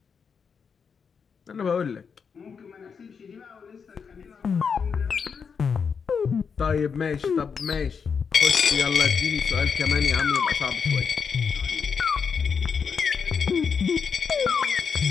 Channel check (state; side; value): quieter; right; 6.2 dB